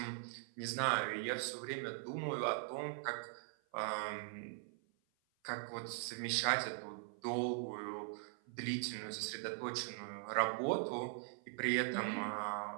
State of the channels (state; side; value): silent; left; 50 dB below the other